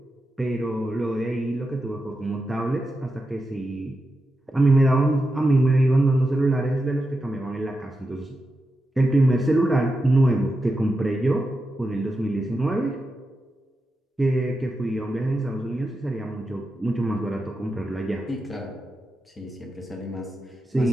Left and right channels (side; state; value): both; normal; correlation 0.89